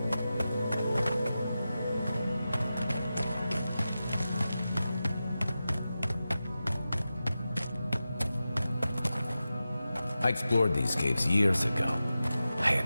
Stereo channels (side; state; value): both; inverted; correlation -0.93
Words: I explored these caves years ago. I